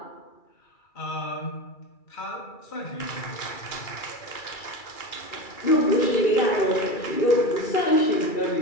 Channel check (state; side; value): late; right; 2.3 ms